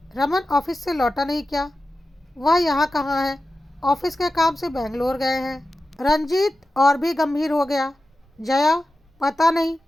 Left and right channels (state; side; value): normal; both; correlation 0.93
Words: रमन ऑफिस से लौटा नहीं क्या? वह यहाँ कहाँ है? ऑफिस के काम से बेंगलोर गए हैं। रंजीत और भी गंभीर हो गया। जया, पता नहीं